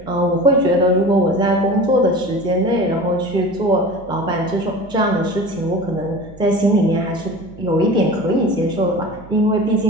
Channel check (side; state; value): right; noise; hum, 21 dB below the sound